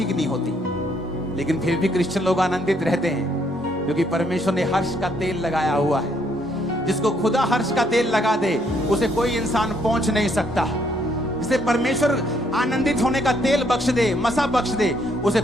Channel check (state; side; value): normal; both; correlation 0.70